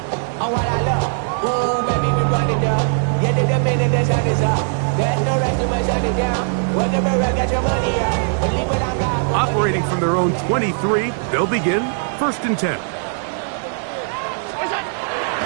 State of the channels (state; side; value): silent; left; 66 dB below the other